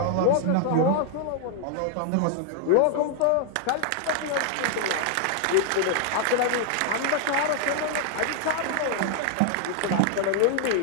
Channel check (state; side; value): different; both; correlation 0.00